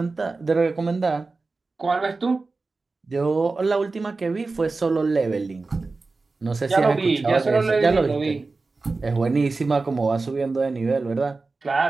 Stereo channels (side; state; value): left; quieter; 3.8 dB